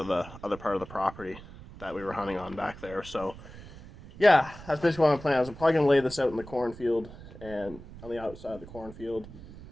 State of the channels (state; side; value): noise; right; rumble, 16 dB below the sound